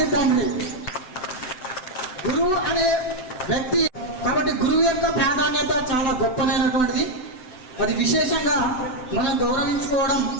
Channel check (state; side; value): late; right; 7.9 ms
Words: తండ్రి. గురువు అనే వ్యక్తి కాబట్టి గురువు యొక్క ప్రాధాన్యత చాలా గొప్పనైనటువంటిది. అది విశేషంగా మనం గౌరవించుకోవడం